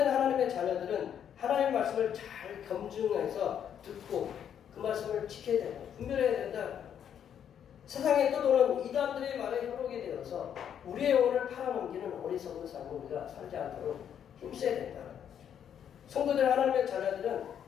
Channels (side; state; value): right; quieter; 8.9 dB